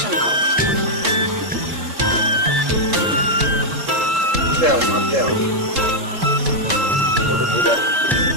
করো। দেও মা দেও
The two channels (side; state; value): left; late; 3.7 ms